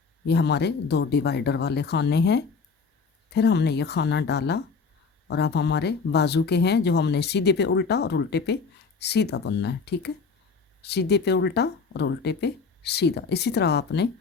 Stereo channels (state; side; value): quieter; right; 5.0 dB